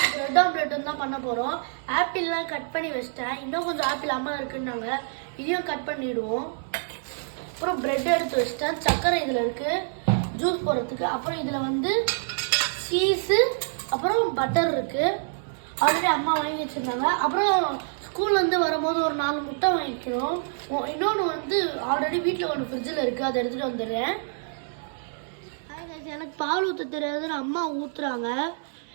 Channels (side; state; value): left; silent; 60 dB below the other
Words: பிரெட் ஆம்லெட்டும் தான் பண்ண போறோம். ஆப்பிள்லாம் கட் பண்ணி வச்சிட்டேன். இன்னும் கொஞ்சம் ஆப்பிள் அம்மா இருக்குன்னாங்க. இதையும் கட் பண்ணிடுவோம். அப்புறம் பிரெட் எடுத்து வச்சிட்டேன். சக்கரை இதுல இருக்கு ஜூஸ் போடுறதுக்கு. அப்புறம் இதுல வந்து சீஸ் அப்புறம் பட்டர் இருக்கு. ஆல்ரெடி அம்மா வாங்கி வச்சிருந்தாங்க. அப்புறம் ஸ்கூல்ல இருந்து வரும்போது ஒரு 4 முட்டை வாங்கிக்கிறோம். இன்னொன்று வந்து ஆல்ரெடி வீட்டில் ஒன்று ஃப்ரிட்ஜில் இருக்கு, அதை எடுத்துட்டு வந்துடுறேன். எனக்கு பால் ஊற்ற தெரியாதுன்னு அம்மா ஊற்றுறாங்க.